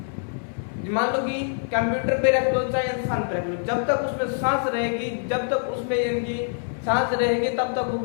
मान लो कि कंप्यूटर पे रख लो चाहे इंसान पे रख लो, जब तक उसमें सांस रहेगी, जब तक उसमें इनकी सांस रहेगी, तब तक वो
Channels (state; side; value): silent; right; 62 dB below the other